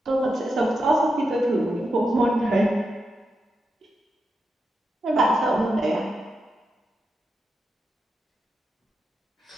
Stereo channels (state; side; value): normal; both; correlation 0.86